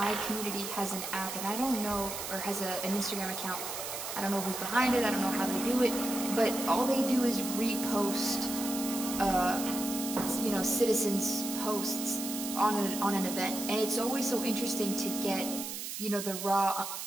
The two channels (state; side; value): noise; right; hiss, 6 dB below the sound